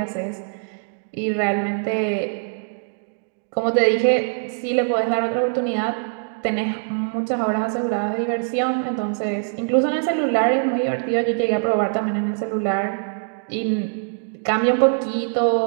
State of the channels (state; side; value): silent; left; digital silence